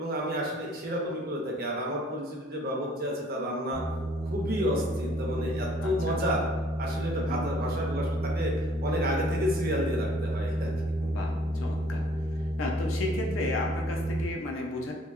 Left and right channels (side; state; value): both; normal; correlation 0.59